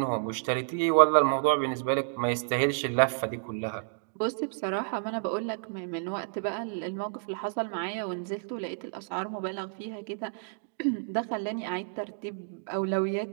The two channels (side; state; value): left; silent; digital silence